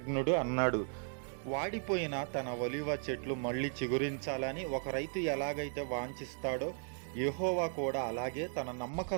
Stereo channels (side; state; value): left; silent; 54 dB below the other